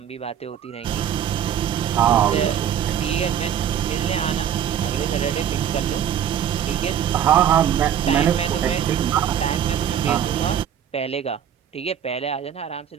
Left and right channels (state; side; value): quieter; left; 9.3 dB